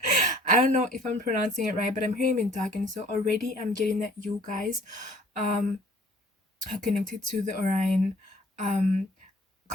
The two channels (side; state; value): both; normal; correlation 0.54